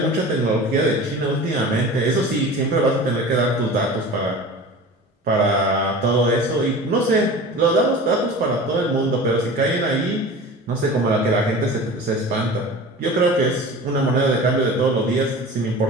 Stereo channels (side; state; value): both; normal; correlation 0.37